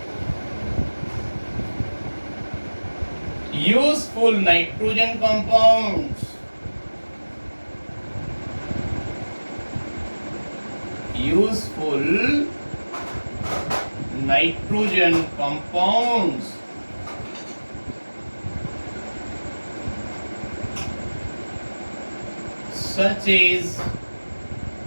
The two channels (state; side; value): inverted; both; correlation -1.00